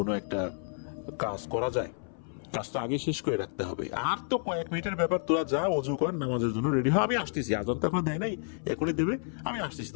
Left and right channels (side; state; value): right; silent; 58 dB below the other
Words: একটা কাজ করা যায়? কাজটা আগে শেষ করে রাখতে হবে। আর তো কয়েক মিনিটের ব্যাপার, তোরা যা অজু কর, নামাজের জন্য রেডি হয়, আমি আসতেছি, আজান তো এখন দেয় নাই, এখনই দেবে, আমি আসতেছি,